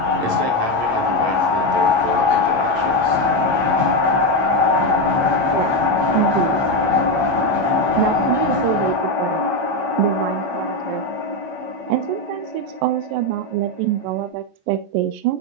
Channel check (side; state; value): left; late; 8.7 ms